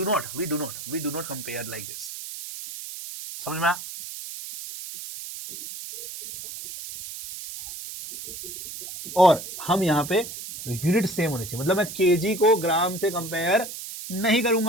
do not compare like this, समझ में आया? और हम यहां पे यूनिट सेम होनी चाहिए, मतलब मैं केजी को ग्राम से कंपेयर नहीं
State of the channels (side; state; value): right; noise; hiss, 10 dB below the sound